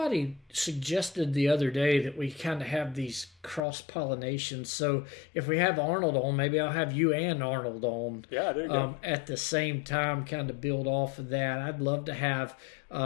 suggested the other day that we kind of have these cross pollinations. So if we have Arnold on, maybe I'll have you and Arnold on. Yeah, there you go. At the same time, kind of build off of that. I'd love to have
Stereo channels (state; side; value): drops out; right; at 3.6 s